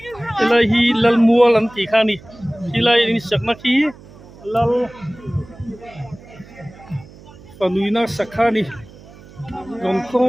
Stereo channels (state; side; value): noise; right; hum, 21 dB below the sound